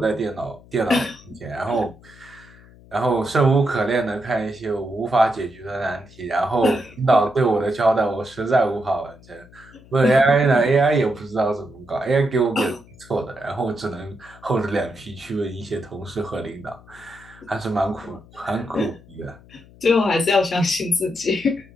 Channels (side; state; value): left; noise; hum, 23 dB below the sound